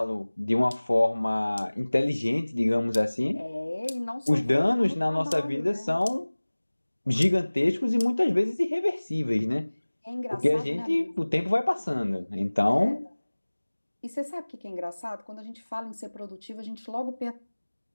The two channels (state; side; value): inverted; both; correlation -1.00